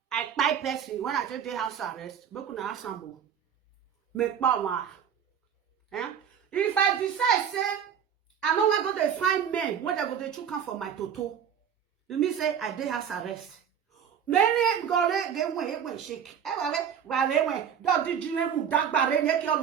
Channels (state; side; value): quieter; left; 8.2 dB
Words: I buy person when I take the house arrest. But kuna asambo, make power. If I decide say I know I go to find men when they go to chook for my toto, you mean say I did house arrest. Many go get way shake. Don't did you that barren your